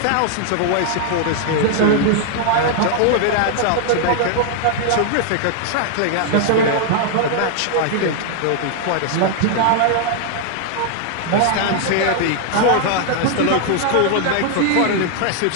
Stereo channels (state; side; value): different; both; correlation 0.00